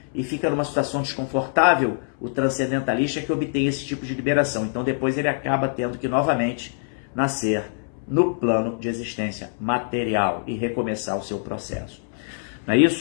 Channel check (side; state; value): right; silent; 62 dB below the other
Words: e fica numa situação desconfortável o transcendentalista que obtém esse tipo de liberação. Então depois ele acaba tendo que novamente nascer no plano de existência material e recomeçar o seu processo. Não é